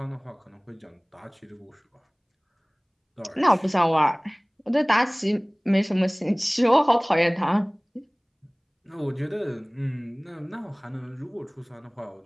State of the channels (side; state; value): both; identical; correlation 1.00